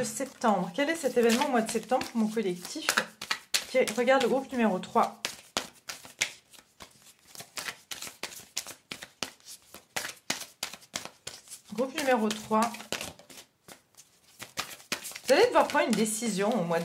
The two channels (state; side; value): identical; both; correlation 1.00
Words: septembre. Quel est cet événement au mois de septembre pour mon collectif qui regarde le groupe numéro 3? Groupe numéro 3. Vous allez devoir prendre une décision au mois